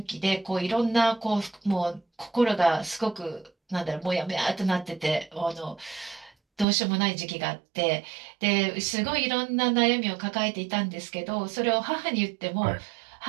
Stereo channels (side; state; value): left; drops out; at 6.7 s